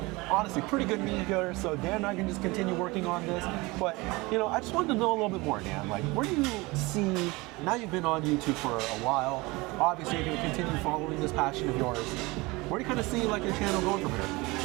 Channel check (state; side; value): quieter; left; 23.4 dB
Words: Honestly, pretty good meat here, so Dan and I can just continue working on this. But, you know, I just wanted to know a little bit more, Dan. Like, where do you see, now you've been on YouTube for a while, obviously you're gonna continue following this passion of yours. Where do you kind of see, like, your channel going from here?